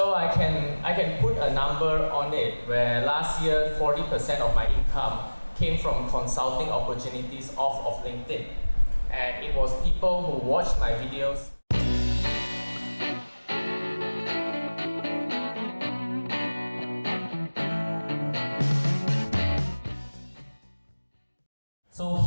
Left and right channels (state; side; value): inverted; both; correlation -1.00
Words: I can put a number on it where last year 40% of my income came from consulting opportunities off of LinkedIn. And it was people who watched my videos. So